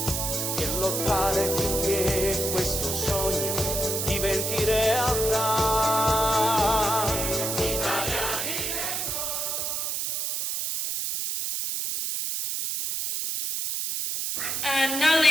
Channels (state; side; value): noise; right; hiss, 1 dB below the sound